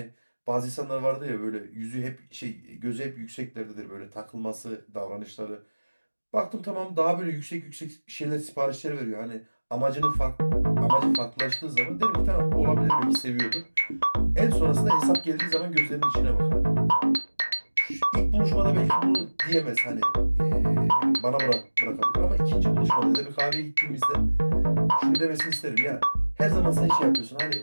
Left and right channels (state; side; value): inverted; both; correlation -1.00